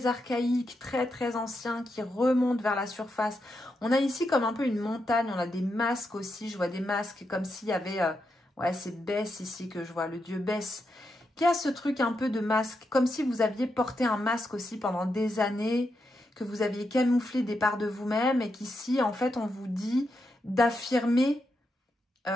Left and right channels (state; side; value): normal; both; correlation 0.84